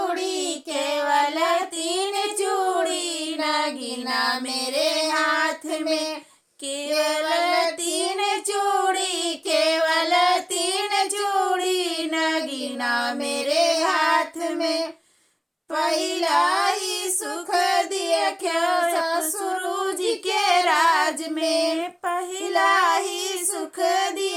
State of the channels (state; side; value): identical; both; correlation 1.00